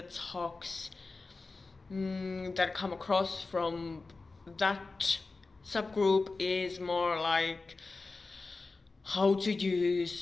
talks that come across from that subgroup is more like how to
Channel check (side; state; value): right; quieter; 3.8 dB